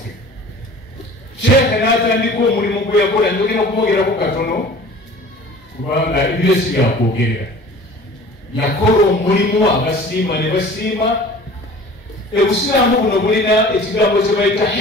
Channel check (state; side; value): normal; both; correlation 0.44